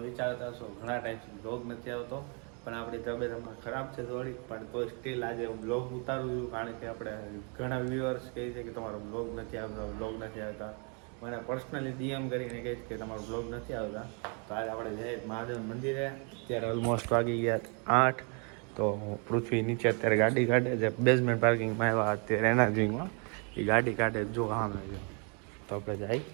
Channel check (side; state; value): left; quieter; 36.9 dB